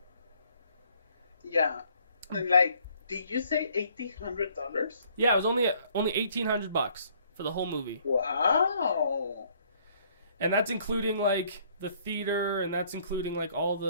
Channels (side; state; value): both; inverted; correlation -0.63